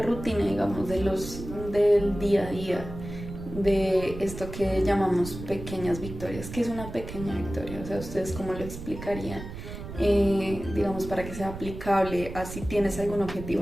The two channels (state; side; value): noise; right; rumble, 10 dB below the sound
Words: rutina, digamos, del día a día, de esto que llamamos pequeñas victorias, ¿qué es una pequeña victoria? O sea, ¿ustedes cómo lo explicarían? Digamos, para que sea aplicable a si tienes algún objetivo